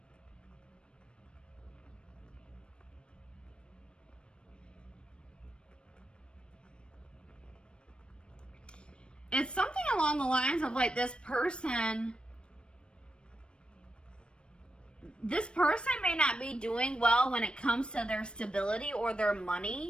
it's something along the lines of like this person may not be doing well when it comes to their stability or their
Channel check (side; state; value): right; late; 0.056 ms